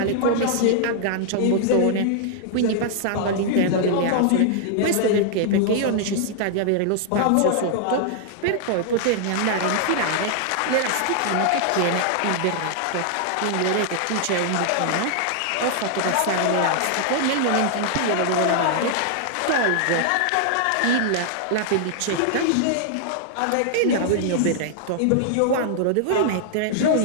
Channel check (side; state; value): both; different; correlation -0.01